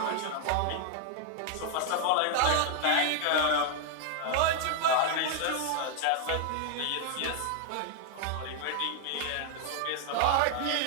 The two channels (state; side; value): different; both; correlation 0.00